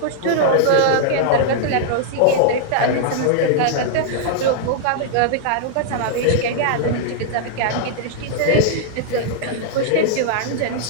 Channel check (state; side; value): different; both; correlation -0.01